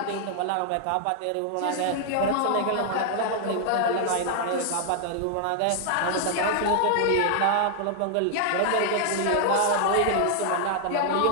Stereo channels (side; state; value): both; different; correlation -0.01